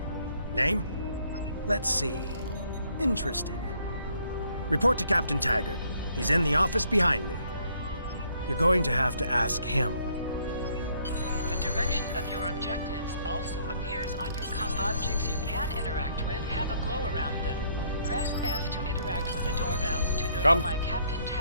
Name? Let's see. Interesting. Report to Captain Taggart. He's in the office behind me. You're going to have to ask him. The direction of your objectives also appears on your objects you can interact with have a glow around them. Press F to interact with the doorbell to notify Captain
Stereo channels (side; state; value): both; inverted; correlation -0.66